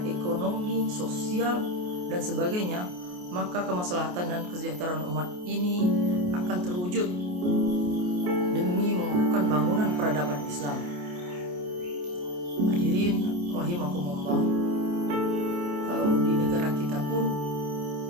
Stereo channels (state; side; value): late; left; 28 ms